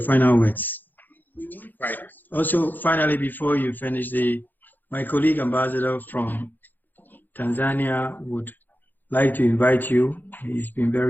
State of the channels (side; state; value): right; late; 0.087 ms